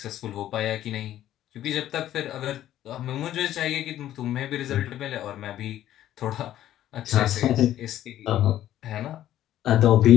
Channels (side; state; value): right; quieter; 12.5 dB